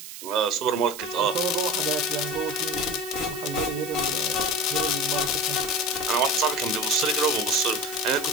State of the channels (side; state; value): right; noise; hiss, 12 dB below the sound